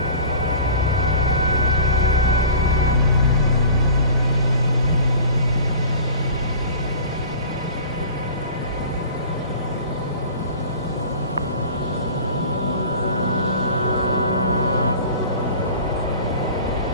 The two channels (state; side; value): inverted; both; correlation -0.41